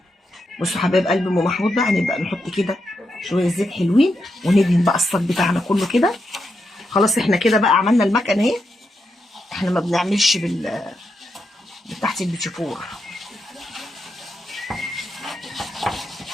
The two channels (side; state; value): both; normal; correlation 0.84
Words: بصوا حبايب قلب ام محمود بقى هنبدا نحط كده شويه زيت حلوين، وندهن بقى الصاج بتاعنا كله كده. خلاص احنا كده بقى عملنا المكنه اهي. احنا ما بنعملش بتاعت البيتيفور.